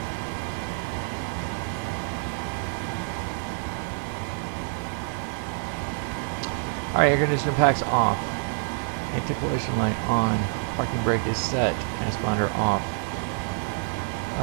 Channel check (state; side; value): silent; left; digital silence